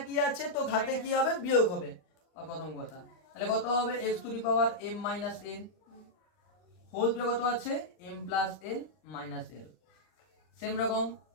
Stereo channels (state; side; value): late; right; 39 ms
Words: আছে তো ঘাতে কি হবে বিয়োগ হবে প্রথম কথা। তাহলে কত হবে X to the power M minus N whole to কত আছে M plus N minus L same রকম